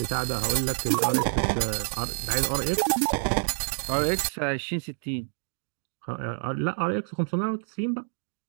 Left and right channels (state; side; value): silent; left; digital silence